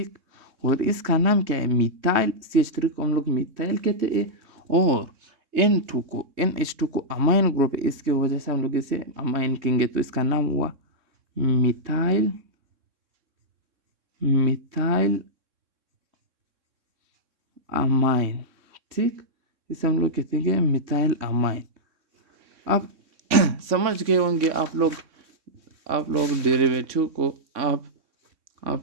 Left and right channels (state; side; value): late; left; 3.6 ms